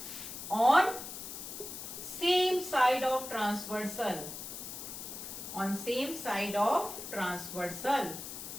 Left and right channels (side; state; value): left; noise; hiss, 9 dB below the sound